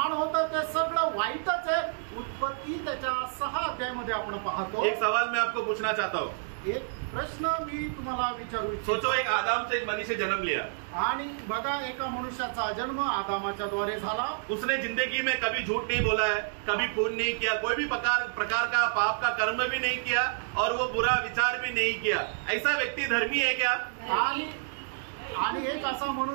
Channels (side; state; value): left; silent; digital silence